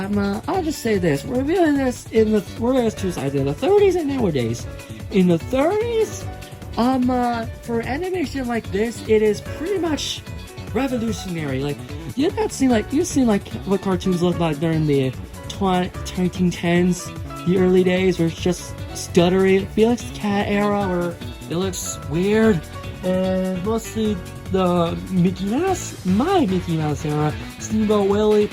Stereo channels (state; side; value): identical; both; correlation 1.00